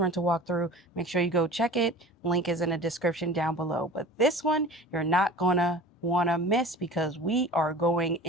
walkthrough, make sure you go check it. Link is in the description down below. But this one, you're not gonna wanna miss because we are going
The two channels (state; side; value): normal; both; correlation 0.39